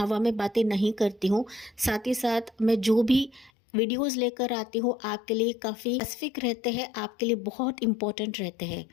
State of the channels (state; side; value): drops out; right; at 3.5 s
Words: में बातें नहीं करती हूँ। साथ ही साथ मैं जो भी वीडियोस लेकर आती हूँ आपके लिए काफ़ी स्पेसिफिक रहते हैं, आपके लिए बहुत इंपॉर्टेंट रहते हैं।